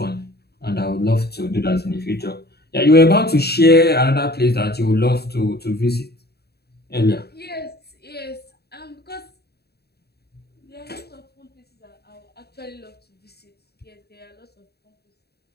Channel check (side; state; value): right; late; 0.47 ms